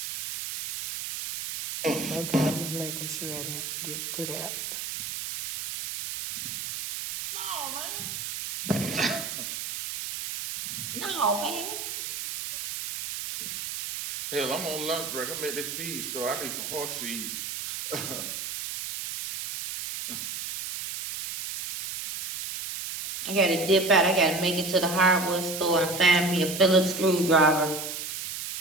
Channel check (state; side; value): noise; right; hiss, 6 dB below the sound